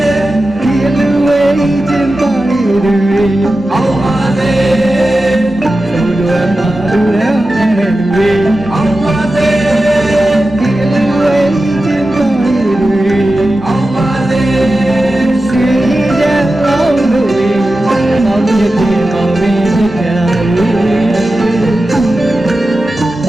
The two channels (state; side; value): normal; both; correlation 0.93